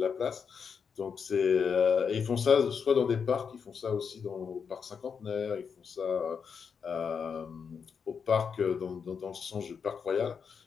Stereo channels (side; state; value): right; quieter; 6.3 dB